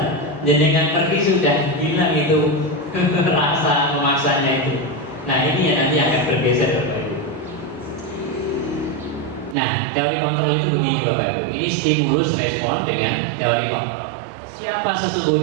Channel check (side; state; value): left; drops out; at 9.6 s